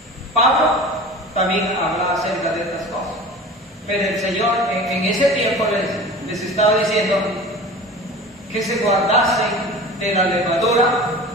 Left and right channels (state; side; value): normal; both; correlation 0.37